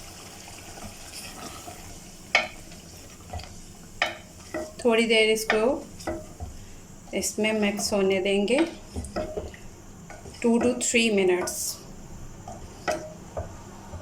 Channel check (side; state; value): both; identical; correlation 1.00